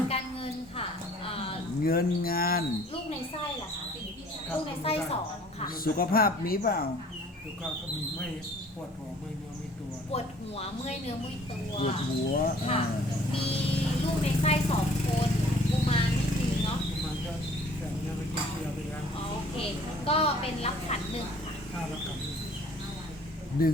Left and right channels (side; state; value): both; normal; correlation 0.54